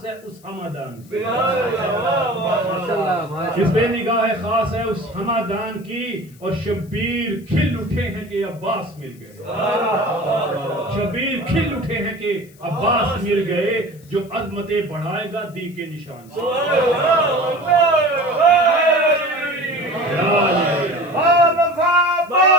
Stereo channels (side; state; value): left; noise; hiss, 27 dB below the sound